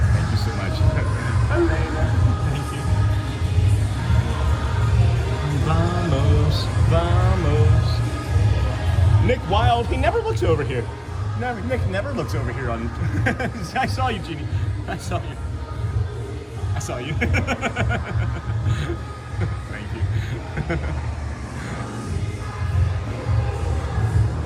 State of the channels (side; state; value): both; identical; correlation 1.00